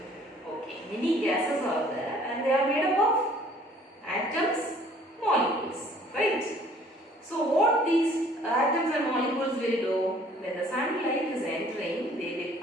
Okay. Many gases are there and they are made up of atoms, molecules. Right? So what these atoms and molecules will do, when the sunlight is entering, they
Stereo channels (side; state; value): both; normal; correlation 0.55